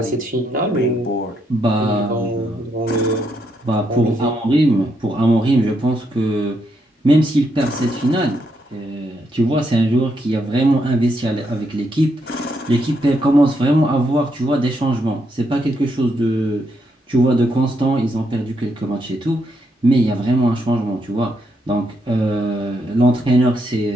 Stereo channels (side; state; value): both; normal; correlation 0.78